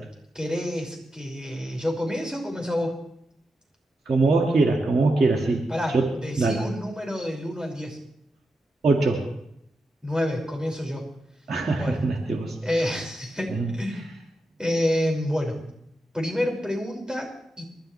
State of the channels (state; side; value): normal; both; correlation 0.87